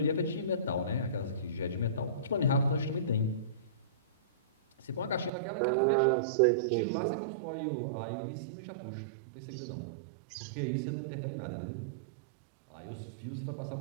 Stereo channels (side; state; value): left; drops out; at 5.3 s